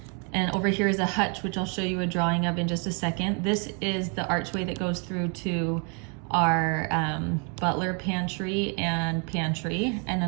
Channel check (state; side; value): quieter; left; 37.4 dB